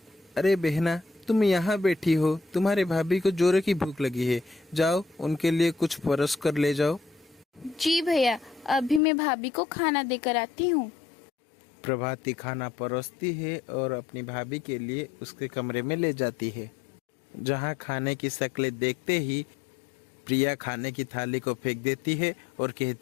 अरे बहना, तुम यहाँ बैठी हो, तुम्हारे भाभी को जोरों की भूख लगी है, जाओ उनके लिए कुछ परोस कर ले जाओ। जी भैया, अभी मैं भाभी को खाना देकर आती हूँ। प्रभाती खाना परोसती है और अपनी भाभी के लिए उसके कमरे में ले जाती है, जहाँ खाने की शक्लें देखते ही प्रिया खाने की थाली को फेंक देती है और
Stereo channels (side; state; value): right; drops out; at 9.0 s